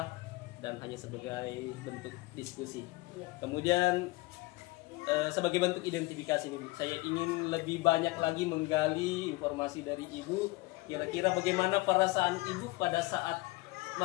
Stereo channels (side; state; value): right; quieter; 22.1 dB